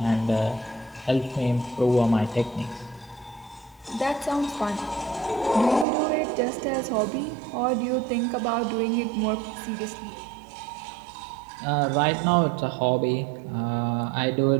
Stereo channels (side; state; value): left; drops out; at 5.9 s